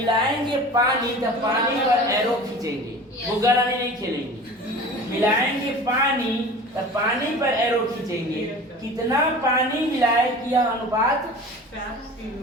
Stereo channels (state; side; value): normal; both; correlation 0.39